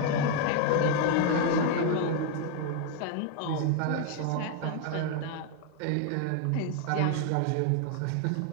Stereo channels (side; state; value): both; different; correlation 0.01